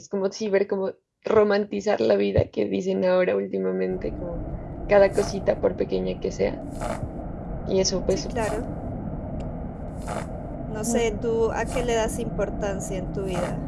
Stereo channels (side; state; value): both; identical; correlation 1.00